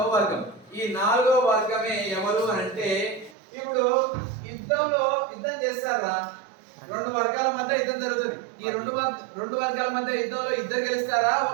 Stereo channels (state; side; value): drops out; left; at 3.4 s